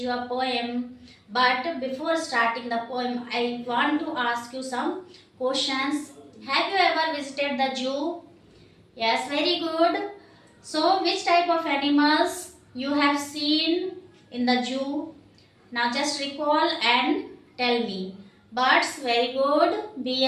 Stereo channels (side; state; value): both; identical; correlation 1.00